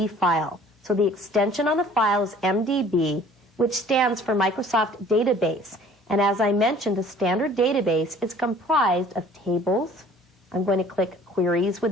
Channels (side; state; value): both; normal; correlation 0.51